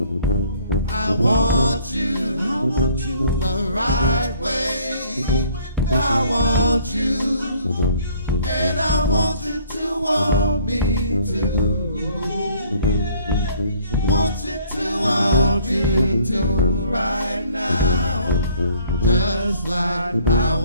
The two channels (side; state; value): both; inverted; correlation -0.59